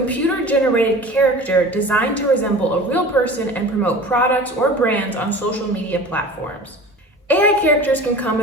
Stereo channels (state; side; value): normal; both; correlation 0.39